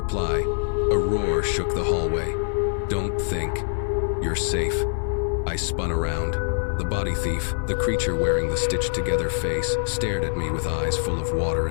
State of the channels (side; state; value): right; silent; 55 dB below the other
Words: a roar shook the hallway. Don't think. You're safe. I spun around. The body thief, the creature wearing the stitched-together face, stared at me with eyes full of water